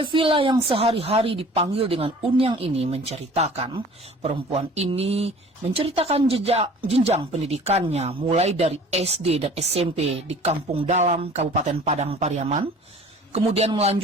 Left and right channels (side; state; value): both; normal; correlation 0.47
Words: yang sehari-hari dipanggil dengan Unyang ini menceritakan, perempuan ini menceritakan jenjang pendidikannya mulai dari SD dan SMP di Kampung Dalam, Kabupaten Padang Pariaman, kemudian